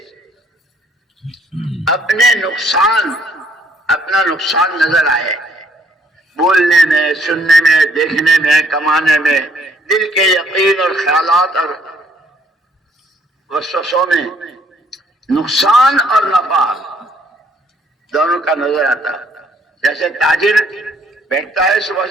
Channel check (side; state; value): both; normal; correlation 0.65